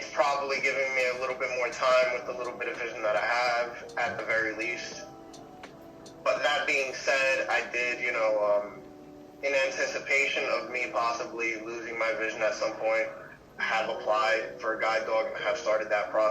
probably giving me a little bit more time with the little bit of vision that I have, at the very least. But that being said, I did, in anticipation of me possibly losing my vision at some point, have applied for a guide dog and have started that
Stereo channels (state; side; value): identical; both; correlation 1.00